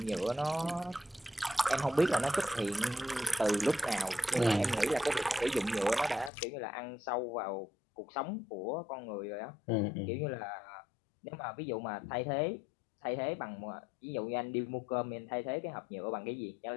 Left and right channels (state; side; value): drops out; right; at 6.3 s